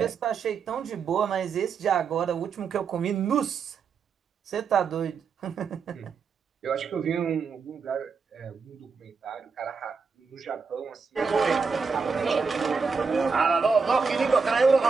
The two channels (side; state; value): left; quieter; 5.3 dB